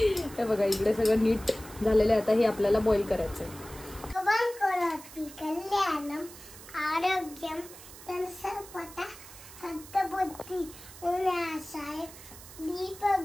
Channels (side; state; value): right; noise; hiss, 17 dB below the sound